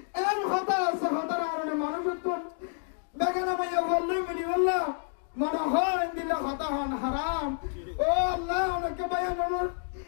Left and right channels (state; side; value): silent; right; digital silence